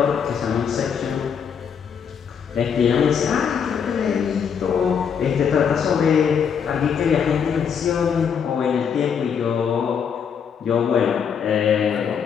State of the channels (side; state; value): right; quieter; 7.2 dB